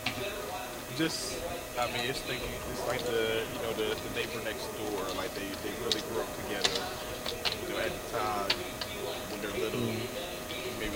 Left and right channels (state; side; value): identical; both; correlation 1.00